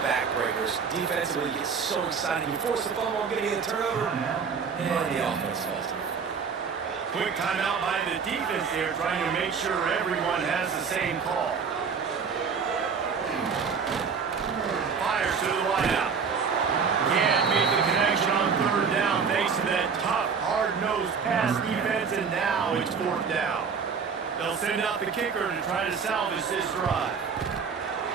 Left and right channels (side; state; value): left; quieter; 5.9 dB